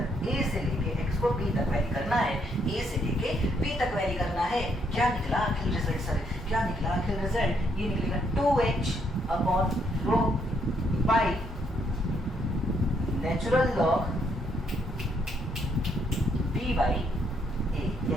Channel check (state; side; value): normal; both; correlation 0.73